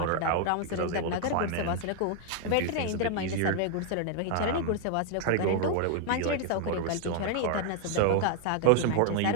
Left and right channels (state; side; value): different; both; correlation 0.00